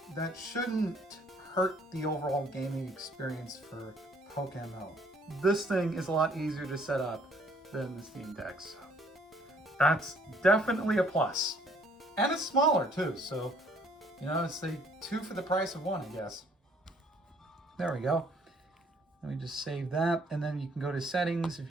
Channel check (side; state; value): both; normal; correlation 0.61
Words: that shouldn't hurt the overall gaming experience for PokeMMO. This thing is a lot easier to set up than the Steam Deck, so that's definitely a plus. And it's smaller too, so you know, it's like 2 for the price of 1, I guess. There we go. Let me just save that, and then you can go to settings if